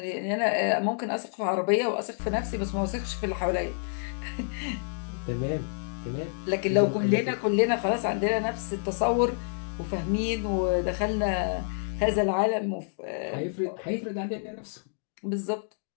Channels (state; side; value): silent; right; digital silence